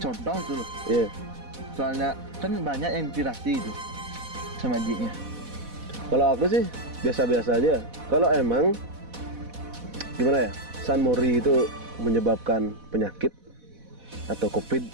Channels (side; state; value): left; late; 4.1 ms